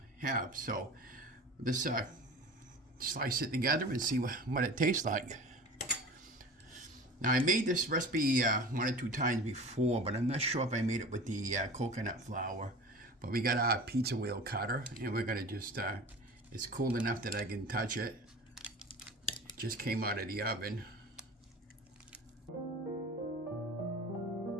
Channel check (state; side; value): normal; both; correlation 0.37